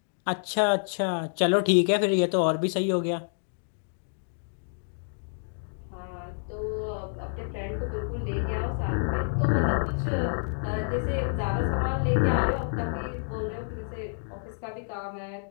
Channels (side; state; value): right; silent; digital silence